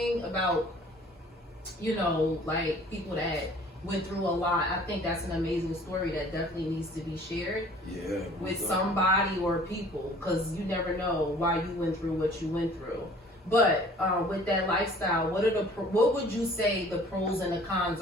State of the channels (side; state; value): both; normal; correlation 0.51